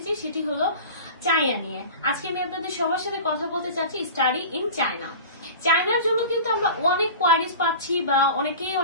সেটি হলো চায়না নিয়ে। আজকে আমি আপনাদের সবার সাথে কথা বলতে চাচ্ছি স্টাডি ইন চায়না। চায়নার জন্য কিন্তু আমরা অনেক কোয়ারিজ পাচ্ছি বা অনেকেই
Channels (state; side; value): inverted; both; correlation -0.36